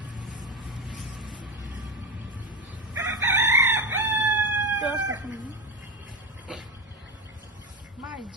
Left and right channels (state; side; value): normal; both; correlation 0.17